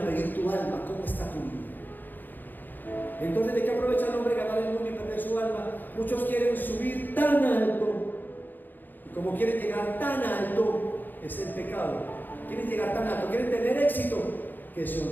pedir tu alma, ¿cómo está tu vida? Entonces, ¿de qué aprovecha el hombre ganar el mundo y perder su alma? Muchos quieren subir tan alto, y como quieren llegar tan alto, es el pecado. Quieren llegar tan alto, quieren tener éxito, que se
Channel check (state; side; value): late; right; 0.088 ms